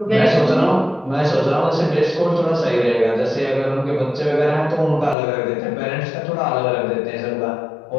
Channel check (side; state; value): right; drops out; at 5.2 s